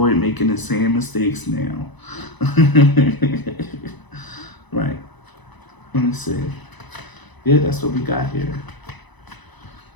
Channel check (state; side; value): late; right; 1.0 ms